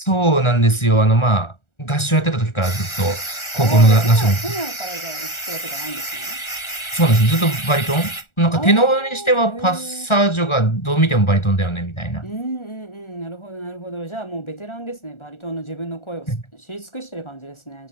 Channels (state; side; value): late; right; 1.4 ms